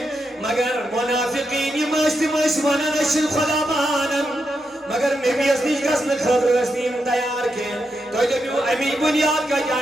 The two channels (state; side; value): normal; both; correlation 0.84